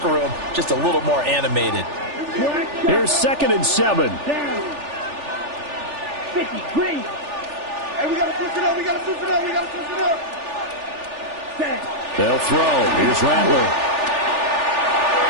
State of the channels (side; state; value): left; late; 3.4 ms